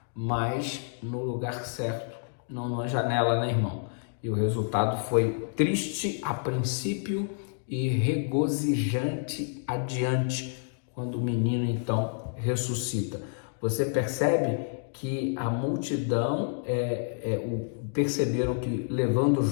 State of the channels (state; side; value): silent; right; digital silence